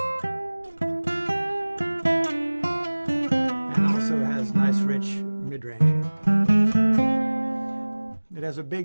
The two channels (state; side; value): inverted; both; correlation -1.00